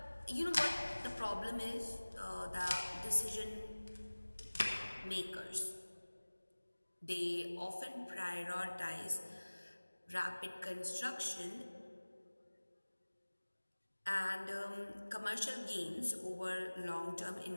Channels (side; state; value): both; inverted; correlation -1.00